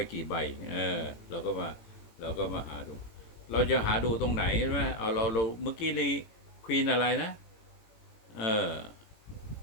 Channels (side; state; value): right; late; 18 ms